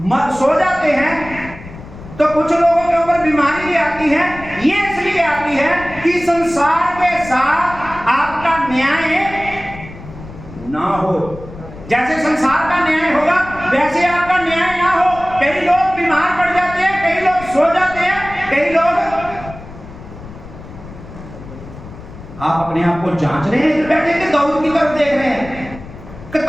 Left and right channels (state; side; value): noise; left; rumble, 15 dB below the sound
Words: सो जाते हैं, तो कुछ लोगों के ऊपर बीमारी भी आती है। ये इसलिए आती है कि संसार के साथ आपका न्याय ना हो। जैसे संसार का न्याय होगा वैसे आपका न्याय ना हो। कई लोग बीमार पड़ जाते हैं, कई लोग सो जाते हैं, कई लोग, आप अपने आप को जांच रहे हैं बैठे कि दाऊद की तरफ देख रहे हैं, कि